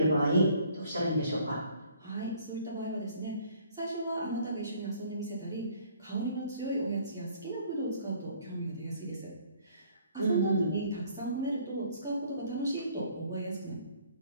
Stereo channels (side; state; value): both; inverted; correlation -0.58